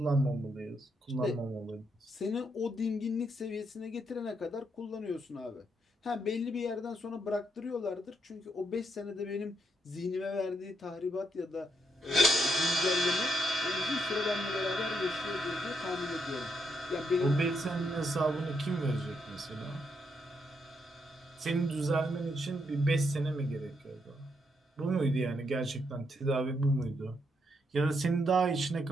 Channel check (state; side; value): normal; both; correlation 0.78